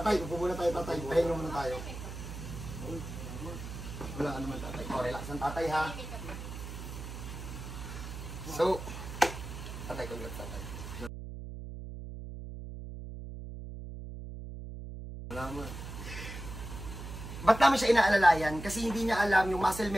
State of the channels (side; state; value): right; noise; hum, 9 dB below the sound